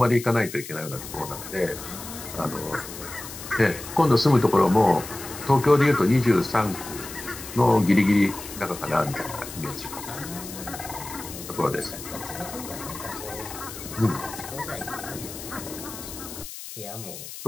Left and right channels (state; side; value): noise; left; hiss, 11 dB below the sound